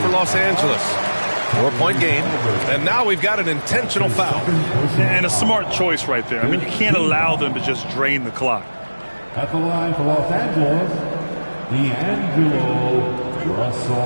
Los Angeles. 4-point game. And now we've got an intentional foul. And a smart choice right there. I mean, you can't allow them to just drain the clock. At the line for Los Angeles, D'Angelo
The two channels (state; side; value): inverted; both; correlation -1.00